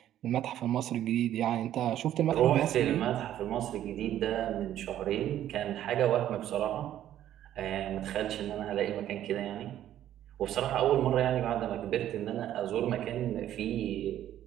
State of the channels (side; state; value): left; quieter; 11.8 dB